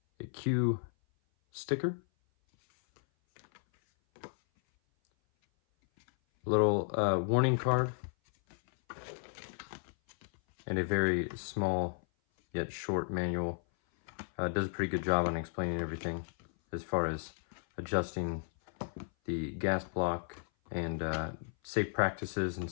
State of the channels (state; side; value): silent; right; 55 dB below the other